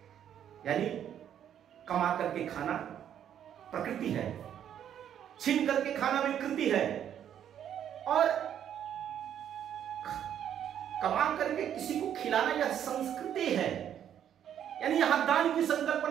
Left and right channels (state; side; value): quieter; left; 9.7 dB